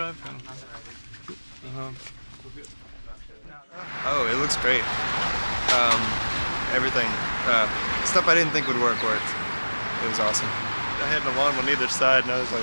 Oh, it looks great. Everything, stuff I didn't think would worked. It was awesome. I had an alarm on either side, and I was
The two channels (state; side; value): inverted; both; correlation -1.00